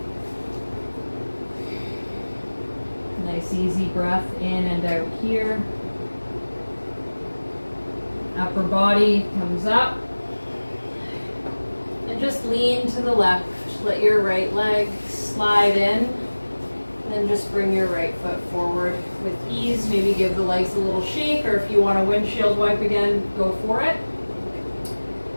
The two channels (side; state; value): both; inverted; correlation -1.00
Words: Nice easy breath in and out here. Upper body comes up. And just lean to the left. Let your right leg slide in. Then just bring your right foot forward with ease. Maybe give the legs a little shake, or if you want a windshield wipe again, go for it.